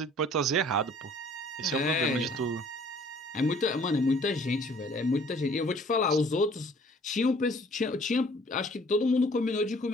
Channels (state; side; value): normal; both; correlation 0.55